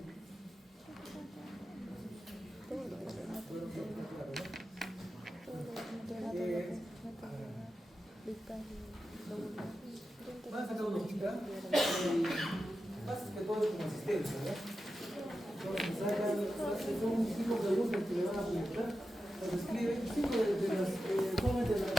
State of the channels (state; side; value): normal; both; correlation 0.91